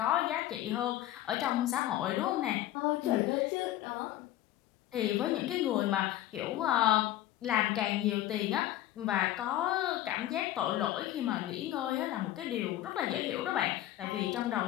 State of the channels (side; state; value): right; quieter; 13.8 dB